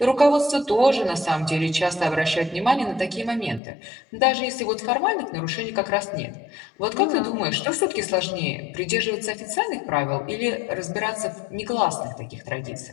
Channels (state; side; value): drops out; right; at 3.6 s